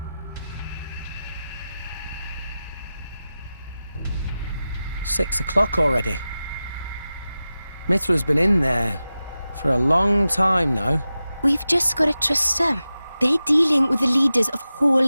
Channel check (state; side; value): inverted; both; correlation -0.94